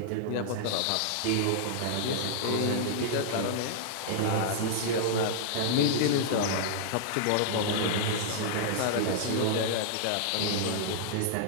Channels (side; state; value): both; different; correlation -0.01